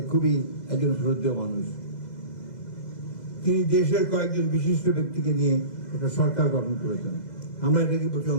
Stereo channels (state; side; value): late; right; 2.0 ms